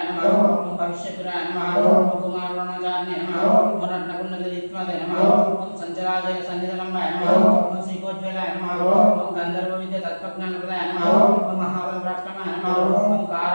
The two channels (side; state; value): both; inverted; correlation -1.00